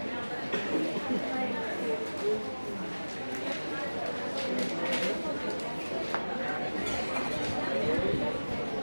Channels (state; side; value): inverted; both; correlation -1.00